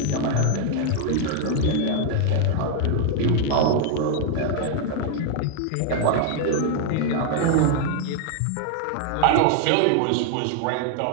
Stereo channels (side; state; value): both; different; correlation 0.00